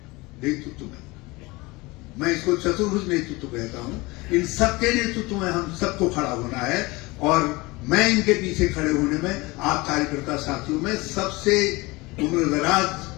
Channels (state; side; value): quieter; right; 23.1 dB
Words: नेतृत्व में, मैं इसको चतुर्भुज नेतृत्व कहता हूं, इन सबके नेतृत्व में हम सबको खड़ा होना है। और मैं इनके पीछे खड़े होने में आप कार्यकर्ता साथियों में सबसे उम्रदराज